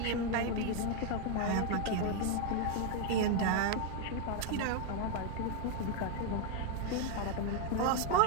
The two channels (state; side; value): different; both; correlation 0.01